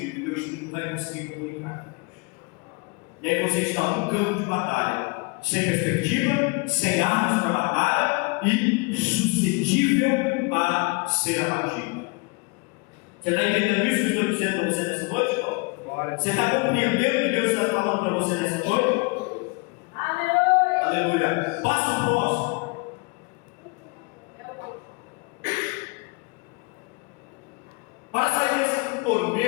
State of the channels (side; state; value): right; quieter; 29.9 dB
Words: E o teu espírito não vai conseguir comunicar com Deus. E aí você está num campo de batalha, sem perspectiva, sem armas para batalha e suscetível a ser abatido. Você está entendendo isso que eu estou dizendo para você nessa noite, irmão? Você está compreendendo o que Deus está falando para você nessa noite? Aleluia! Aleluia! Passo próximo. Para sair desse